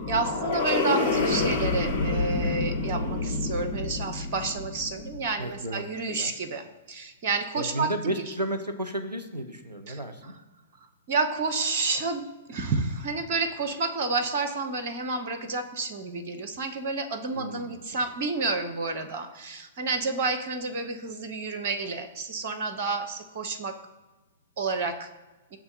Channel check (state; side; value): inverted; both; correlation -0.35